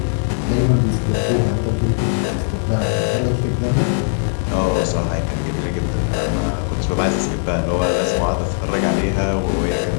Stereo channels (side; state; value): right; silent; digital silence